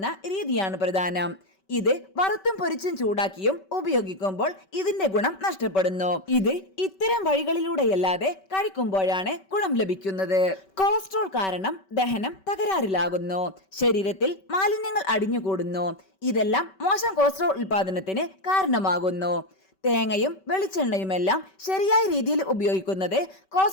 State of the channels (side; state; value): right; late; 5.2 ms